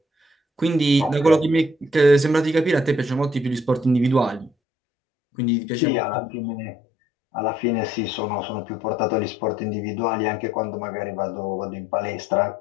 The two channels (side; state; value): right; drops out; at 4.5 s